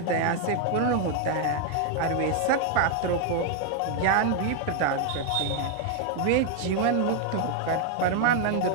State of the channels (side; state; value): both; different; correlation 0.00